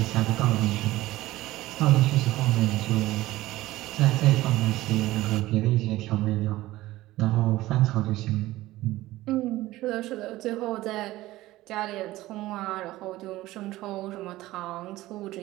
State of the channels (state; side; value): quieter; left; 17.0 dB